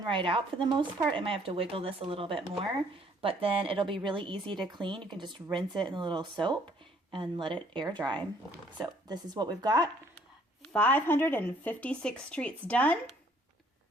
right out for the most part. I might have to wiggle this a little bit more, but then it'll be really easy to clean. You can just rinse it in a little soap and let it air dry. So this is what we've got. 556 treats done.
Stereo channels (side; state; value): both; normal; correlation 0.62